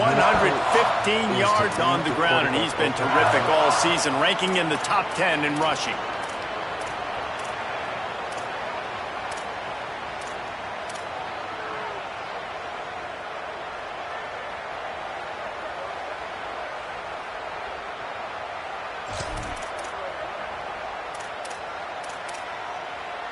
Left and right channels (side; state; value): both; identical; correlation 1.00